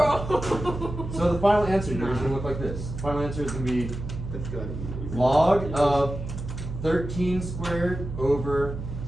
So the final answer here is going to look like this. The final answer is going to be That's good. log of 13 squared over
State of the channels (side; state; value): right; noise; hum, 7 dB below the sound